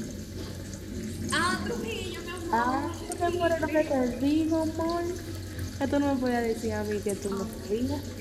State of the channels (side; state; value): both; identical; correlation 1.00